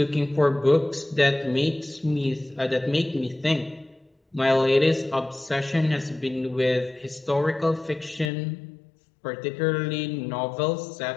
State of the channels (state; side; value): drops out; right; at 8.3 s